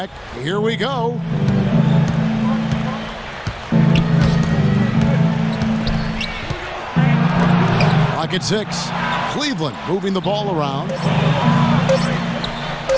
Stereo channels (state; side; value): identical; both; correlation 1.00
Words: here we go. Clock at 6. Cleveland moving the ball around.